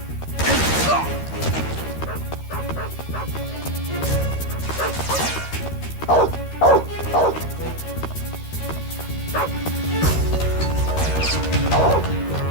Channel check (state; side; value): late; right; 13 ms